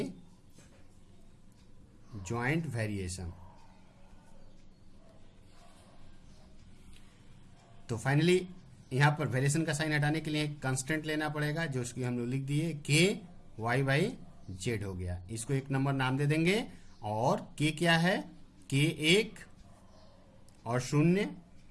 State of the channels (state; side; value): identical; both; correlation 1.00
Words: joint variation. तो फाइनली यहाँ पर वेरिएशन का साइन हटाने के लिए एक कांस्टेंट लेना पड़ेगा, जो उसकी हम लोग लिख दिए k y बाई z हो गया। इसको एक नंबर नाम दे देंगे। और k क्या है, k1 और शून्य